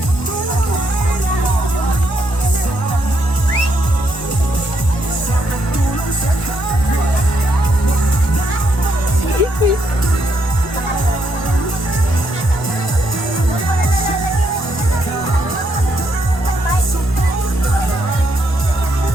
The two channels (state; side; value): late; right; 1.4 ms